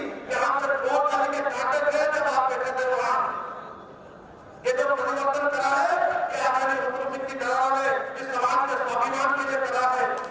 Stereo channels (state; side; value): identical; both; correlation 1.00